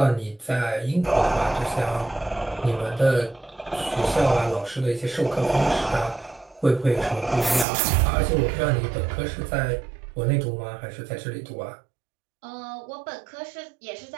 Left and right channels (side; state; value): left; drops out; at 7.7 s